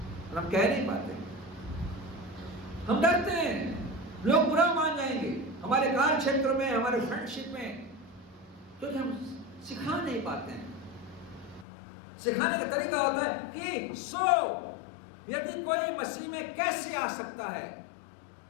और हम कह नहीं पाते। हम डरते हैं, लोग बुरा मान जाएंगे हमारे कार्य क्षेत्र में, हमारे फ्रेंडशिप में, क्योंकि हम सिखा नहीं पाते हैं। सिखाने का तरीका होता है कि यदि कोई मसीह में कैसे आ सकता है,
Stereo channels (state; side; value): drops out; right; at 11.7 s